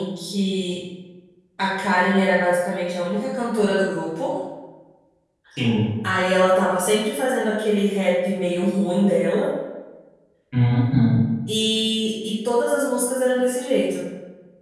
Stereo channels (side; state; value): both; identical; correlation 1.00